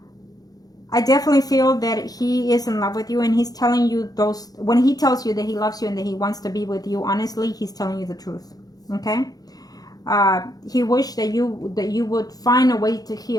I definitely feel that he is in love with you, and he's telling you those, when he tells you that he loves you and that he wants to be with you, honestly, he's telling you the truth, okay? He wished that you would find a way to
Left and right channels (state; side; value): late; right; 0.18 ms